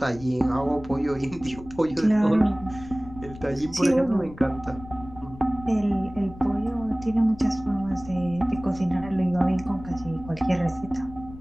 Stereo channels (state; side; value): noise; left; rumble, 16 dB below the sound